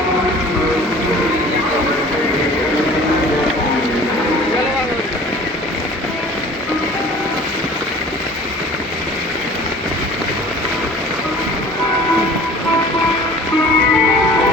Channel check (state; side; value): normal; both; correlation 0.46